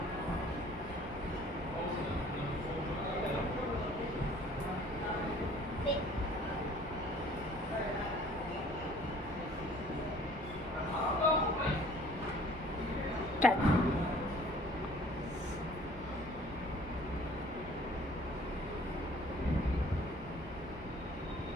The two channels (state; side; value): normal; both; correlation 0.53